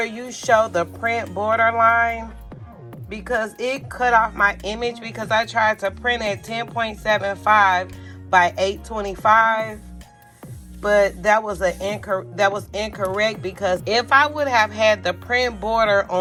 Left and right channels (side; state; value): both; identical; correlation 1.00